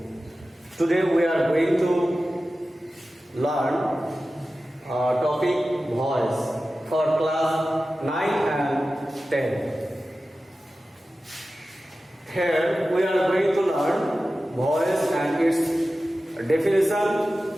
Today we are going to learn topic voice for class 9 and 10. Here we are going to learn voice and its definition,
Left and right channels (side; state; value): both; normal; correlation 0.94